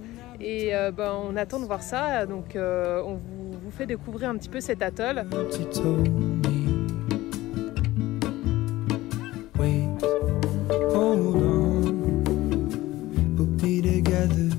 et on attend de voir ça, donc on vous fait découvrir un petit peu cet atoll.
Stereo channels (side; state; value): right; quieter; 17.3 dB